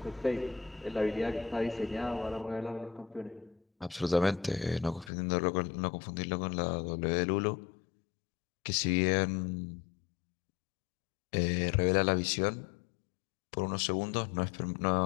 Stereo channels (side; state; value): right; drops out; at 5.1 s